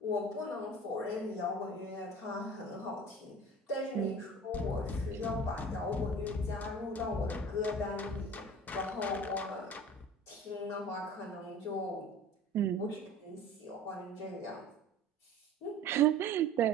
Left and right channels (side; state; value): both; normal; correlation 0.42